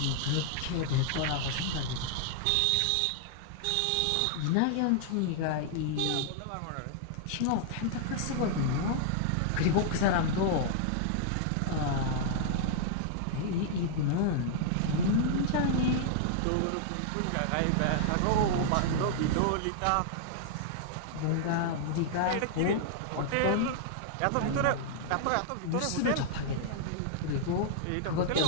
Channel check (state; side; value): different; both; correlation -0.01